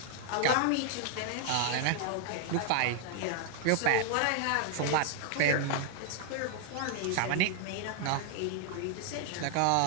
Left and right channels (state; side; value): different; both; correlation 0.00